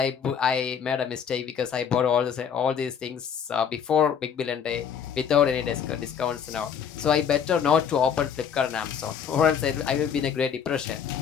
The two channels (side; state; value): right; quieter; 7.6 dB